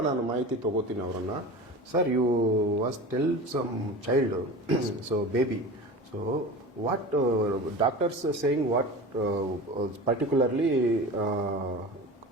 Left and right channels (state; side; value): normal; both; correlation 0.33